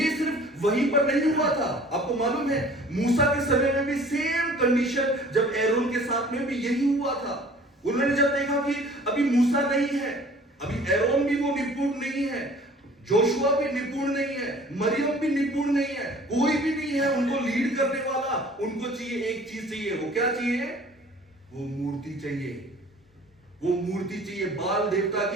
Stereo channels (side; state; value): both; normal; correlation 0.50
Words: सिर्फ वहीं पर नहीं हुआ था। आपको मालूम है मूसा के समय में भी सेम कंडीशन, जब एरोन के साथ में भी यही हुआ था। उन्होंने जब देखा कि अभी मूसा नहीं है, अभी एरोन भी वो निपुण नहीं है, जोशुआ भी निपुण नहीं है, मरियम भी निपुण नहीं है, कोई भी नहीं है उनको लीड करने वाला, उनको चाहिए एक चीज चाहिए। वो क्या चाहिए? वो मूर्ति चाहिए, वो मूर्ति चाहिए, बाल देवता